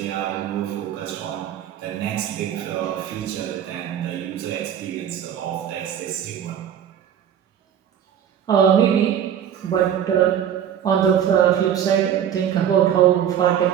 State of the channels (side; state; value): left; quieter; 9.5 dB